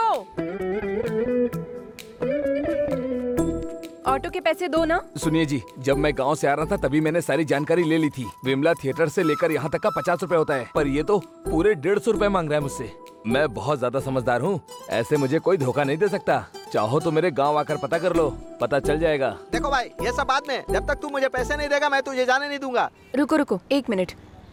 ऑटो के पैसे दो ना। सुनिए जी, जब मैं गांव से आ रहा था तभी मैंने सारी जानकारी ले ली थी। विमला थिएटर से लेकर यहाँ तक का 50 रुपए होता है, पर ये तो पूरे 150 रुपए मांग रहा है मुझसे। मैं बहुत ज्यादा समझदार हूँ, ऐसे मुझे कोई धोखा नहीं दे सकता। चाहो तो मेरे गांव आकर पता कर लो, पता चल जाएगा। देखो भाई, ये सब बाद में, जब तक तू मुझे पैसे नहीं देगा मैं तुझे जाने नहीं दूंगा। रुको रुको, 1 मिनट।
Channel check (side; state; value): both; identical; correlation 1.00